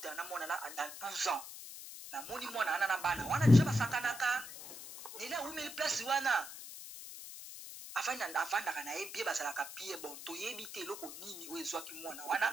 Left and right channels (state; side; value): noise; left; hiss, 12 dB below the sound